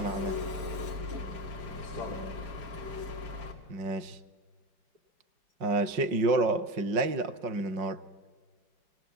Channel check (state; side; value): late; left; 5.5 ms